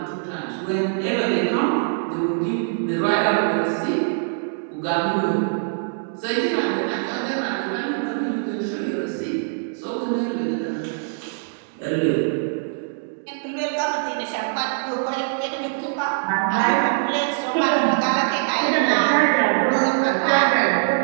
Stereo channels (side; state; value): left; silent; digital silence